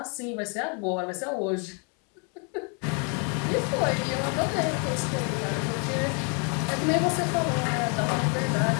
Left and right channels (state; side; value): quieter; right; 37.5 dB